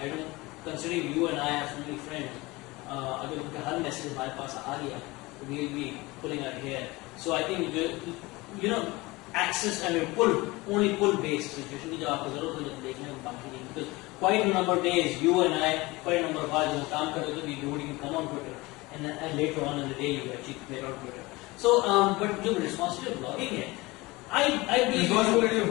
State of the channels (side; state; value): right; quieter; 22.1 dB